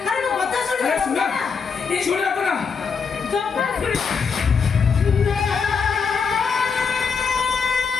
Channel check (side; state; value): right; quieter; 5.7 dB